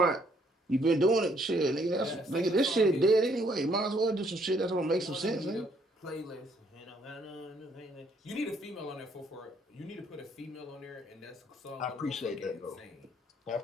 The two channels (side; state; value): both; normal; correlation 0.67